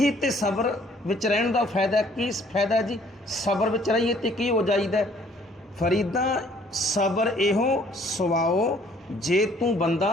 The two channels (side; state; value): both; normal; correlation 0.60